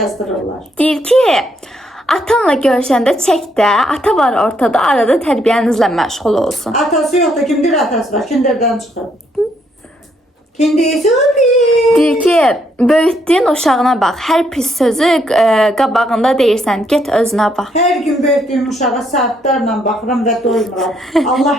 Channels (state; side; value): normal; both; correlation 0.73